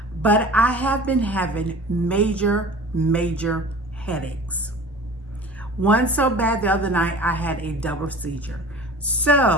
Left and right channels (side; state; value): both; normal; correlation 0.41